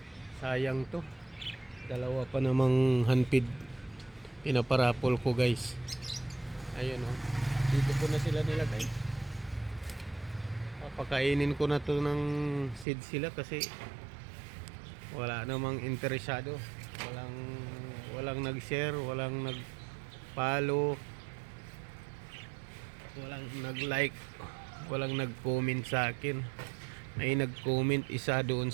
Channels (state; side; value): drops out; left; at 12.9 s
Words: Sayang to. Dalawa pa namang handpid pinaparapol ko guys. Ayun oh. Dito ko na sila nilagay. Papakainin ko na to ng seed sila kasi wala namang interesado. Walang nag-share, walang nag-follow, walang nag-like, walang nag-comment sa akin. May nag-comment isa doon